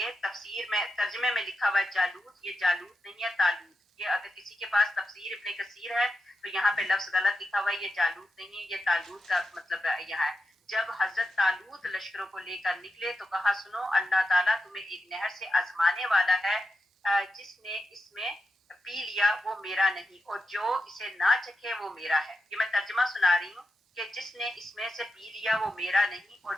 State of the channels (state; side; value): normal; both; correlation 0.88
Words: تفسیر میں ترجمے میں لکھا ہوا ہے جالوت. یہ جالوت نہیں ہے طالوت. یہ اگر کسی کے پاس تفسیر ابن کثیر ہے تو یہاں پہ لفظ غلط لکھا ہوا ہے. یہ جالوت نہیں ہے یہ طالوت کا مطلب یہاں ہے. جب حضرت طالوت لشکروں کو لے کر نکلے تو کہا سنو اللہ تعالیٰ تمہیں ایک نہر سے آزمانے والا ہے. جس نے اس میں پی لیا وہ میرا نہیں اور جو اسے نہ چکھے وہ میرا ہے. یہ میں ترجمہ سنا رہی ہوں کہ جس نے اس میں سے پی لیا وہ میرا نہیں اور